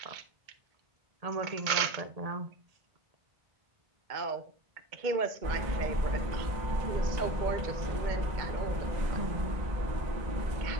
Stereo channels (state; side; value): late; left; 2.1 ms